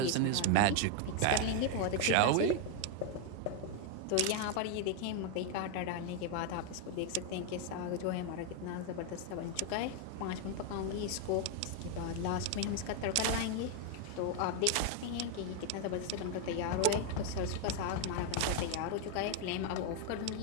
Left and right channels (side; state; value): both; different; correlation 0.01